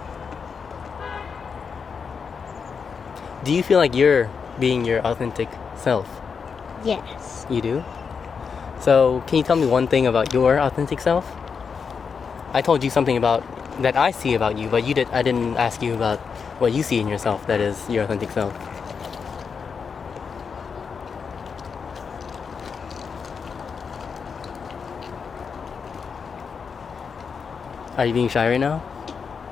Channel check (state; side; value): quieter; right; 5.9 dB